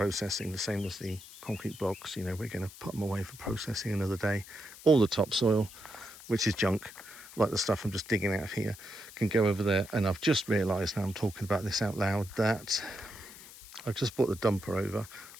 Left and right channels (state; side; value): noise; left; hiss, 17 dB below the sound